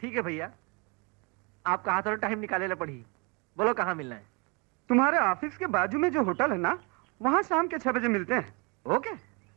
है भैया, आपका हाथ और टाइम निकाले ला पड़ी। बोलो कहाँ मिलना है? तुम्हारे ऑफिस के बाजू में जो होटल है ना, वहाँ शाम के 6 बजे मिलते हैं। ओके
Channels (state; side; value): quieter; left; 30.6 dB